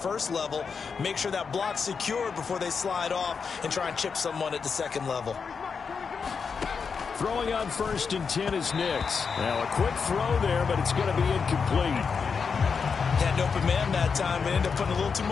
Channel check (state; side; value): quieter; right; 5.7 dB